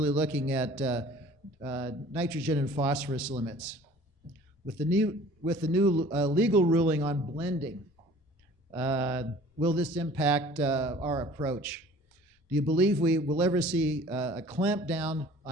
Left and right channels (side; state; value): both; normal; correlation 0.49